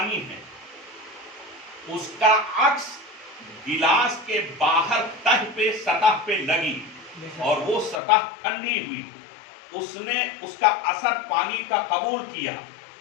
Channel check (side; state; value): right; drops out; at 8.0 s